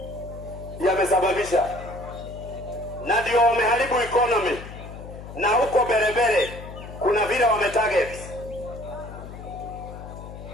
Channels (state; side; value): noise; left; hum, 13 dB below the sound